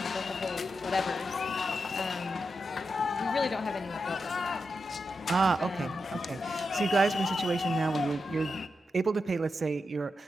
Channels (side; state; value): both; normal; correlation 0.87